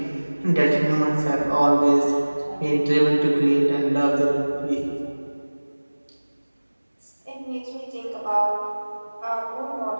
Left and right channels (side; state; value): both; inverted; correlation -1.00